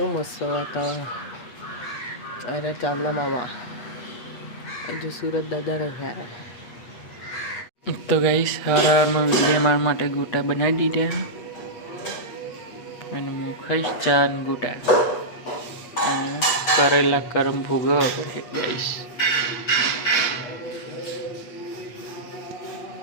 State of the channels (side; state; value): right; late; 8.3 ms